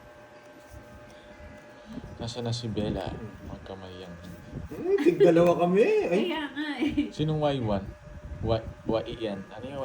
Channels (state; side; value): identical; both; correlation 1.00